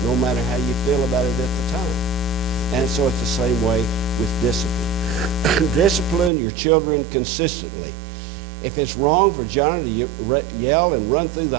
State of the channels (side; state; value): left; drops out; at 6.3 s